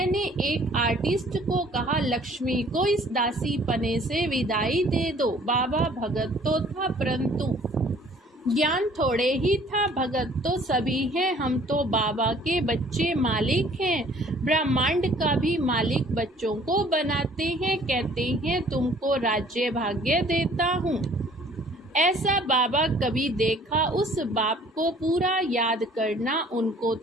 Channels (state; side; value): normal; both; correlation 0.55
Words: एक आर्टिस्ट को कहा, लक्ष्मी को इस दासी पने से विदाई दे दो। बाबा भगत तो था, परंतु ज्ञान थोड़े ही था। भगत तो सभी हैं, हम तो बाबा के बच्चे मालिक हैं। ब्रह्मांड का भी मालिक बच्चों को बनाते हैं, कहते हैं तुमको राज्य भाग्य देता हूँ। ऐसा बाबा कभी देखा? उस बाप को पूरा याद करना। उनको